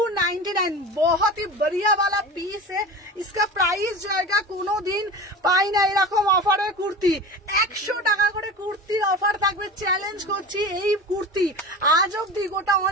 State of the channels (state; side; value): normal; both; correlation 0.32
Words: बहुत ही बढ़िया वाला पीस है। इसका प्राइस जाएगा কোনো দিন পাই না এরকম অফারের কুর্তি 100 টাকা করে কুর্তির অফার থাকবে। চ্যালেঞ্জ করছি এই কুর্তি আজ অব্দি গোটা